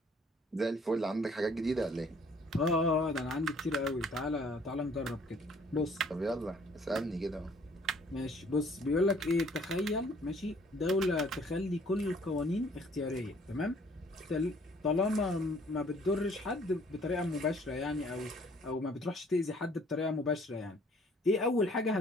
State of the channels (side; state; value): both; normal; correlation 0.59